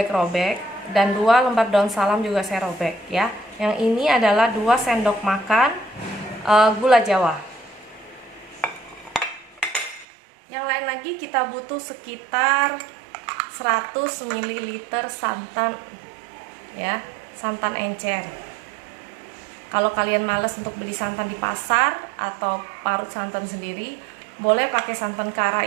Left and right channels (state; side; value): drops out; left; at 10.1 s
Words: dan 2 lembar daun salam juga saya robek ya. Yang ini adalah 2 sendok makan gula jawa. Yang lain lagi kita butuh sekitar 100 ml santan ya, santan encer. Kalau kalian males untuk beli santan di pasar atau parut santan sendiri, boleh pakai santan